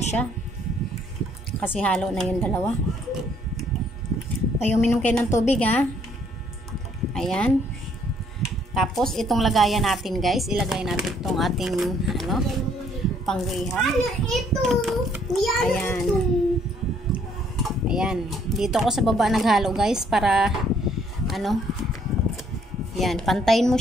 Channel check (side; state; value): both; normal; correlation 0.65